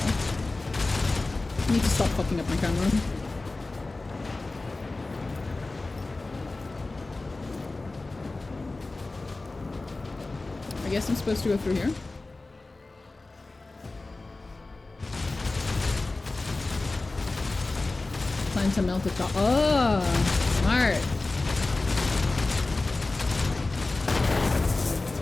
I need to stop fucking up my camera. I guess I'm supposed to go through here. Plan to melt the top. Oh, smart.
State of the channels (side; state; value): right; quieter; 3.2 dB